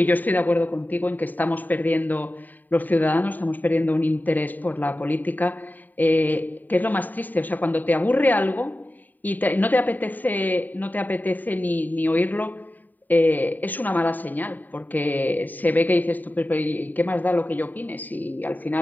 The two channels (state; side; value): late; right; 0.086 ms